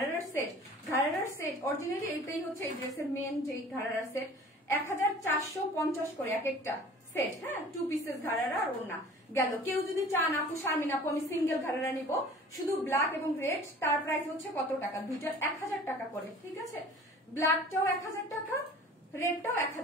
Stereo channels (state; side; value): normal; both; correlation 0.46